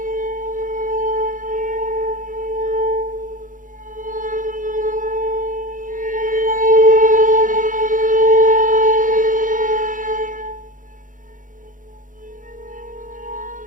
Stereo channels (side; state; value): left; late; 0.38 ms